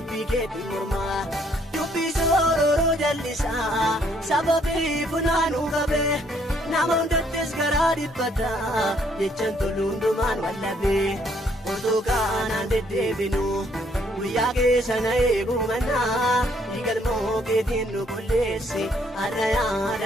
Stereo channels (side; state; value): both; normal; correlation 0.67